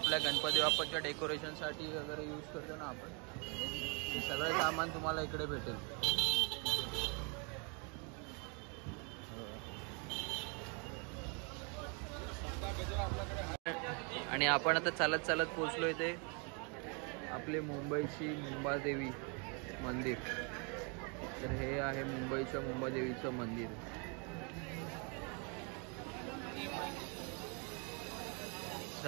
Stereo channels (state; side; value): quieter; left; 34.9 dB